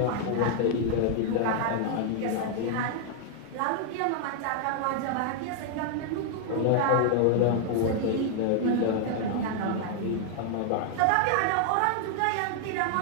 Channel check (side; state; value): both; different; correlation 0.00